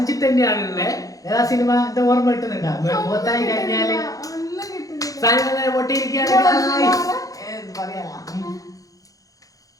തന്നെയാണുള്ളത്. ഏതാ സിനിമ എന്താ ഓർമ്മ കിട്ടുന്നുണ്ടോ? മുഖത്തായി കഴിഞ്ഞാല് സാധനം പൊട്ടിയിരിക്കുകയാണ്.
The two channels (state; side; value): late; right; 0.17 ms